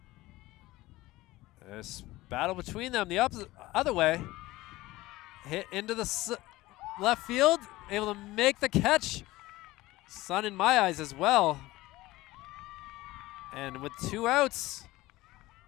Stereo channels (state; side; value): quieter; right; 18.4 dB